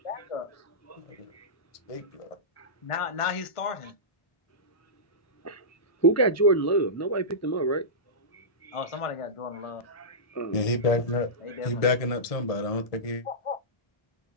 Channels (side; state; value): right; late; 1.6 ms